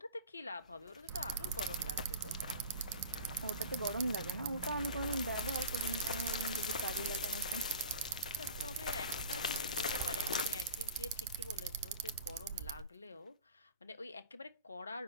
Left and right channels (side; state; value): both; inverted; correlation -0.36